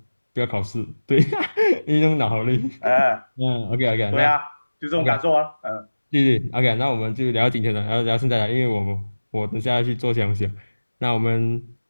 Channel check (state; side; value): inverted; both; correlation -1.00